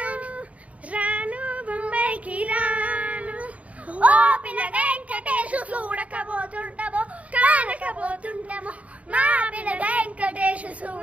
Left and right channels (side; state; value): left; late; 0.067 ms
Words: చూడకబోతుంటామో కానకబోతుంటామో మా పిల్ల వెంకటేశ్